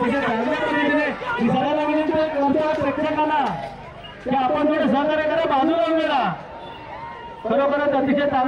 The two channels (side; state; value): both; identical; correlation 1.00